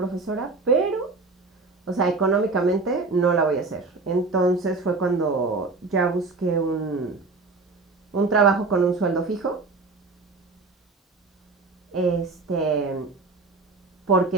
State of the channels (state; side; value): quieter; left; 3.8 dB